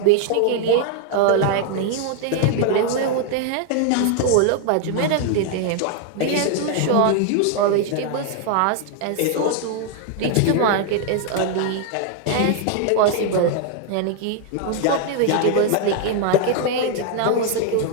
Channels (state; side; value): different; both; correlation 0.00